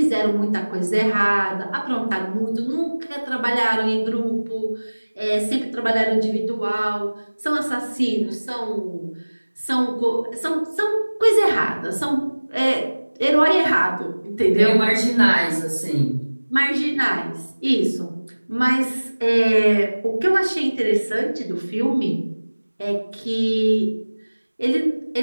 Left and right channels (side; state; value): both; inverted; correlation -1.00